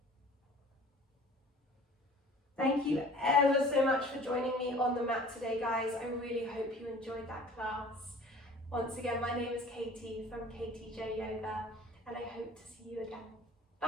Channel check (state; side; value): normal; both; correlation 0.47